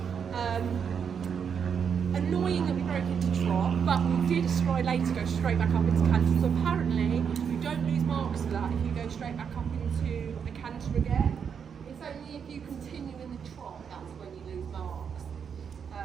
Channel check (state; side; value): quieter; left; 7.1 dB